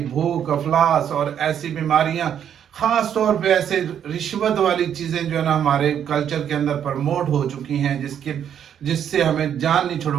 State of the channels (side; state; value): left; quieter; 9.1 dB